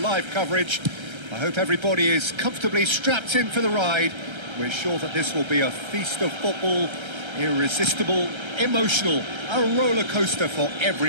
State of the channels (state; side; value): late; left; 1.3 ms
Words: coverage. I hope everybody is comfortably strapped in for the ride. We're sure that this will be a feast of football, irresistible, emotional, a roller coaster for